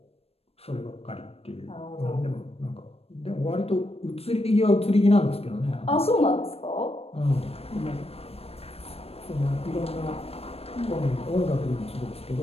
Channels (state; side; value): late; right; 0.29 ms